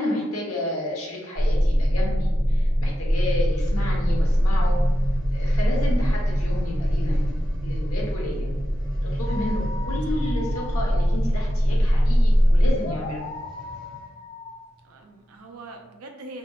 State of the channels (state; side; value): normal; both; correlation 0.91